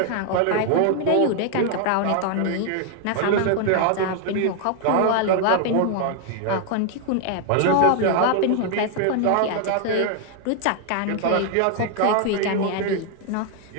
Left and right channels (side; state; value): both; different; correlation 0.00